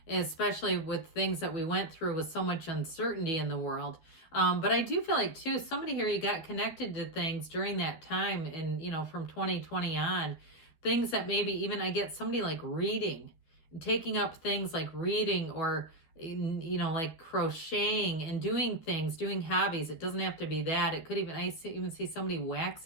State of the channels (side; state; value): right; late; 13 ms